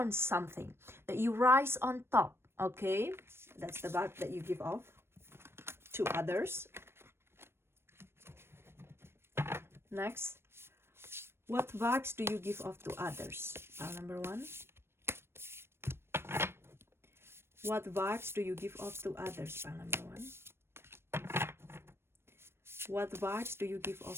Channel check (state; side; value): late; left; 0.12 ms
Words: something, that you rise on top, okay? That's the vibe that you give off to others. Next, what vibes do you give off to others? Pile number one. What vibes do you give off to others? Pile number one. What vibes do you give